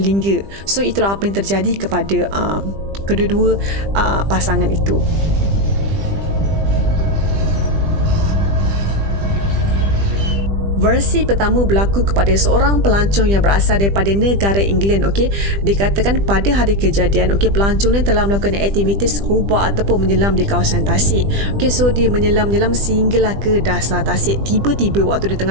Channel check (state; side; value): late; left; 20 ms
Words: So itulah apa yang terjadi kepada kedua-dua pasangan itu. Versi pertama berlaku kepada seorang pelancong yang berasal daripada negara England. Okey, dikatakan pada hari kejadian, okey, pelancong ni telah melakukan aktiviti scuba ataupun menyelam di kawasan Tasik. Okey, so dia menyelam sehinggalah ke dasar Tasik. Tiba-tiba waktu dia